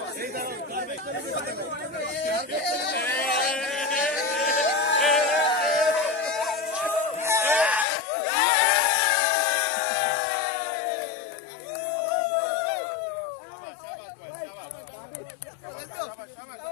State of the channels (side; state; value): right; drops out; at 7.9 s